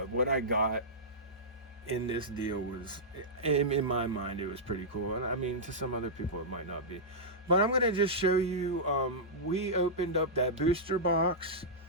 what I got in this deal was, in my mind, it was pretty cool. And I mean, to some other people, it might not be. But I'm going to just show you, we opened up that booster box,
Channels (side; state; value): both; normal; correlation -0.12